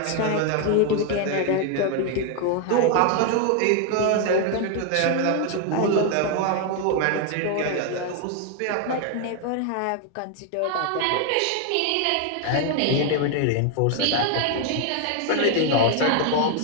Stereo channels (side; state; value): both; different; correlation 0.01